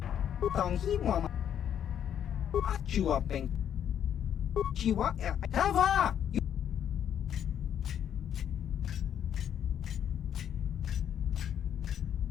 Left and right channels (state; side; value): quieter; right; 9.4 dB